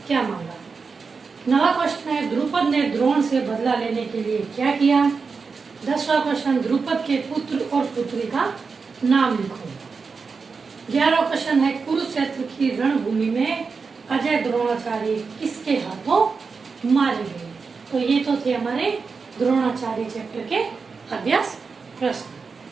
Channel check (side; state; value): left; quieter; 4.9 dB